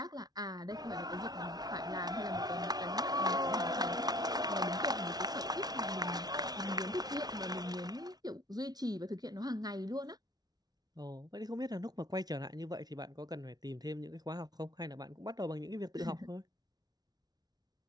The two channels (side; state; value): left; late; 0.19 ms